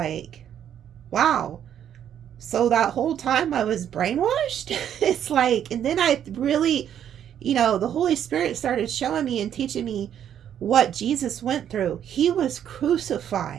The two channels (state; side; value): quieter; left; 9.7 dB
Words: wow. So that whole time I was brainwashed. It's like, and then I really, the Holy Spirit started showing me and teaching me what Jesus went through. He was